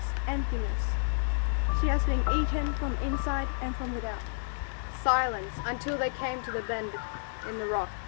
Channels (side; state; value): right; silent; digital silence